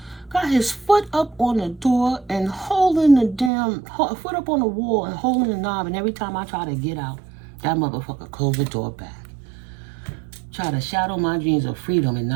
Got his foot up on the door and holding the damn foot up on the wall and holding the knob. And every time I try to get out, that motherfucker closed the door back. Try to shadow my dreams of freedom and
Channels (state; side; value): drops out; left; at 3.5 s